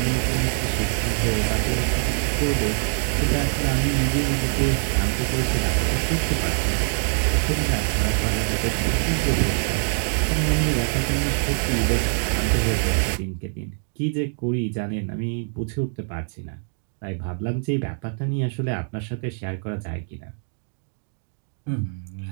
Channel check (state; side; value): silent; left; 63 dB below the other